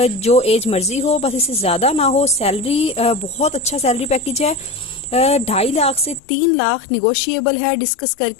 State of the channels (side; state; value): right; drops out; at 6.2 s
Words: जो एज मर्जी हो, बस इससे ज्यादा ना हो। सैलरी बहुत अच्छा सैलरी पैकेज है। 2.5 लाख से 3 लाख निगोशिएबल है, डिस्कस